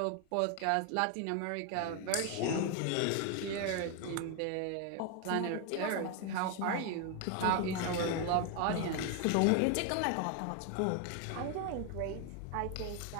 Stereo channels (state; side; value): different; both; correlation 0.01